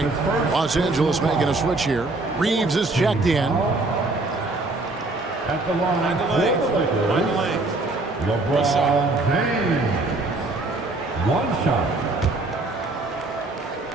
Los Angeles making a switch here. Reeves is checked in. At the line for the Lakers, LeBron James. 1 shot.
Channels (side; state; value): left; quieter; 3.1 dB